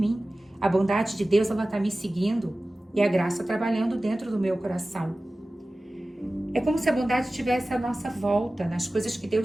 A bondade de Deus, ela está me seguindo. E a graça trabalhando dentro do meu coração. É como se a bondade estivesse à nossa volta, nas coisas que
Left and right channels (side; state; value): both; normal; correlation 0.96